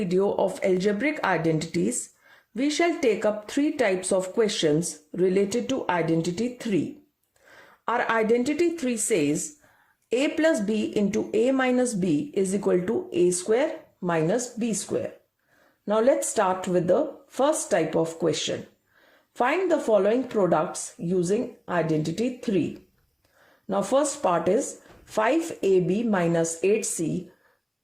of algebraic identities, we shall take up three types of questions related to identity 3. Our identity 3 says a plus b into a minus b is equal to a square minus b square. Now let's start with the first type of question. Find the following products using identity 3. Now first part is 5ab minus 8c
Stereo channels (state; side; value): identical; both; correlation 1.00